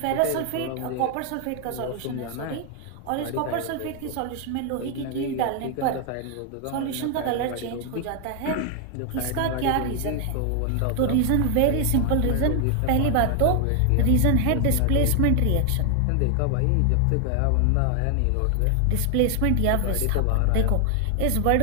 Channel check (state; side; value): different; both; correlation 0.00